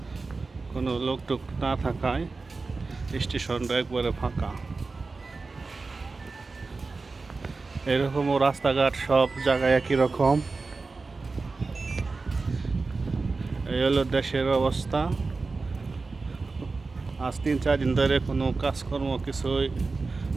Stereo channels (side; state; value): left; quieter; 3.9 dB